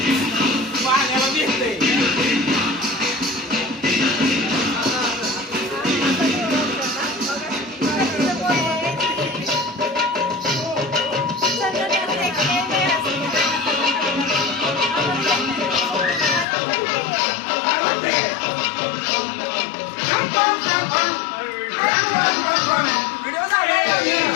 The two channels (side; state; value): right; drops out; at 16.4 s